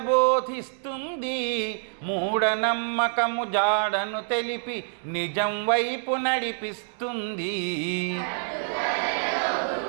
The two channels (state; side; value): silent; left; 60 dB below the other